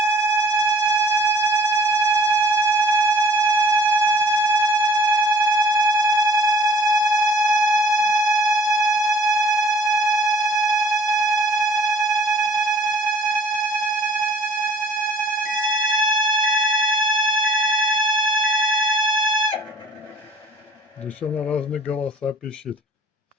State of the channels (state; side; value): normal; both; correlation 0.52